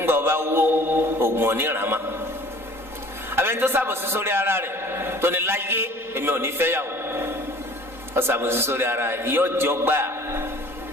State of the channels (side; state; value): left; late; 3.9 ms